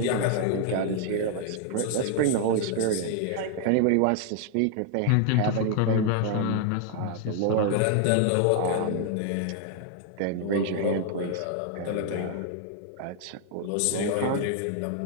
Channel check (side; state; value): both; different; correlation 0.00